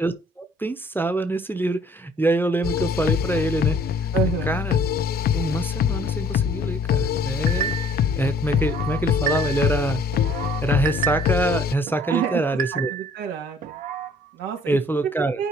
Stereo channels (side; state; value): both; normal; correlation 0.56